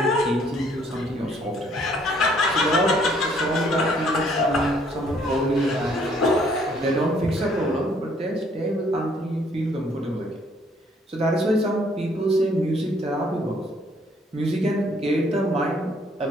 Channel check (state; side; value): normal; both; correlation 0.64